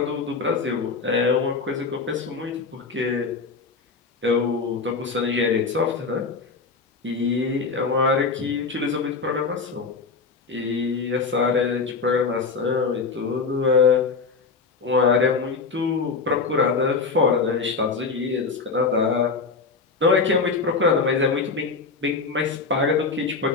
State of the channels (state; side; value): quieter; right; 4.6 dB